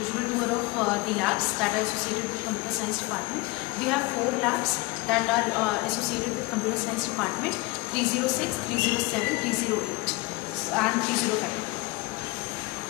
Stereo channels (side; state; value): right; quieter; 23.3 dB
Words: tour of the labs that are associated with computer science department. We have 4 labs that are associated with computer science department: 306, 307, 308 and 305.